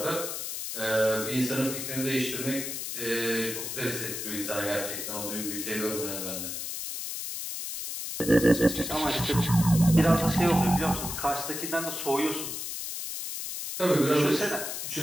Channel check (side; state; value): left; noise; hiss, 5 dB below the sound